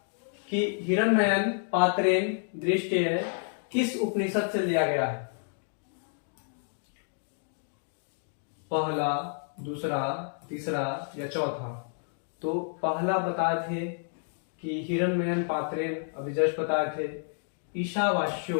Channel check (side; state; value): right; silent; 58 dB below the other